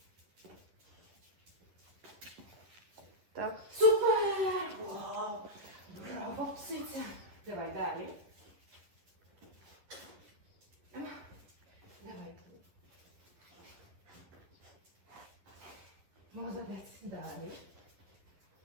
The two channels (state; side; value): late; left; 11 ms